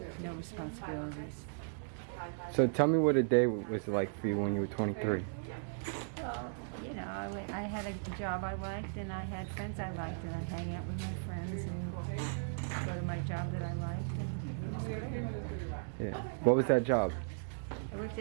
No responsibilities. So, tell me what a day was like for you when you were 23. Well, you know, I had a job I liked, and I had friends I liked, and I'd hang out with my friends and go to my job that I liked. And it was great. Yeah. What was that job? I worked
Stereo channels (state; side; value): silent; left; digital silence